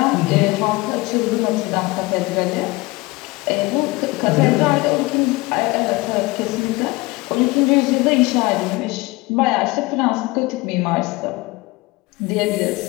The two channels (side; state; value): right; quieter; 22.4 dB